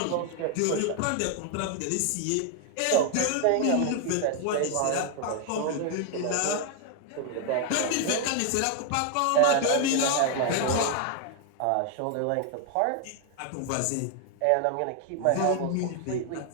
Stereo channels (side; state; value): both; different; correlation 0.00